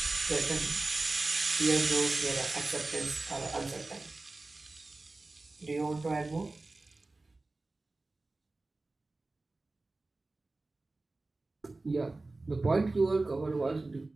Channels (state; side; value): quieter; left; 3.2 dB